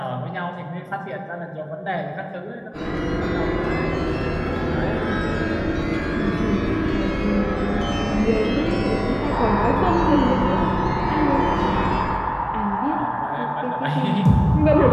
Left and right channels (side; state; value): both; identical; correlation 1.00